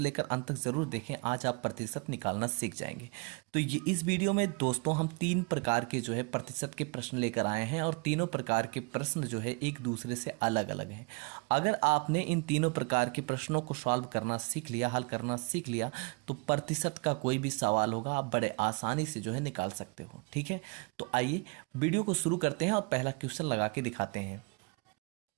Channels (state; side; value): quieter; left; 31.1 dB